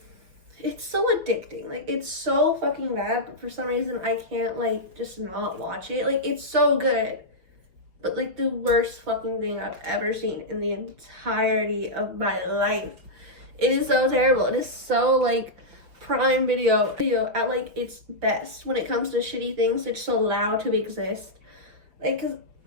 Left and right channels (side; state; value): left; late; 5.9 ms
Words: it's so addicting. It's so fucking bad, but for some reason I can't just not watch it. It's so good, but the worst fucking thing I've ever seen in the entirety of my life. It is so terrible. It is so Prime Video at its best when it comes to shitty things that's just allowed to exist. Cause